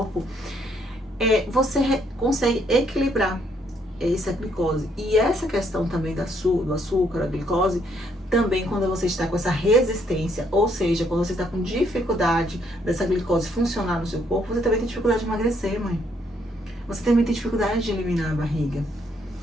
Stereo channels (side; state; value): both; normal; correlation 0.70